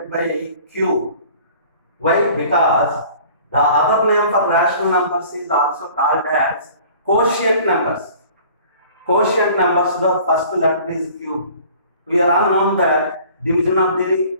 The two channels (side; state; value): both; inverted; correlation -0.49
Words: by q. Why? Because the other name for rational numbers is also called as quotient numbers. Quotient numbers, the first letter is q. We are all known that division of the